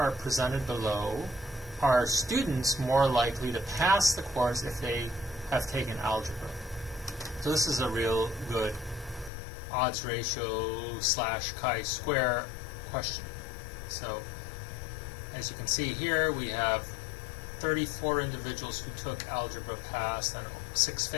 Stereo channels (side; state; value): right; drops out; at 9.3 s